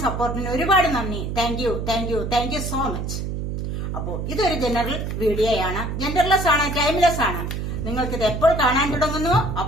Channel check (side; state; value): right; noise; hum, 4 dB below the sound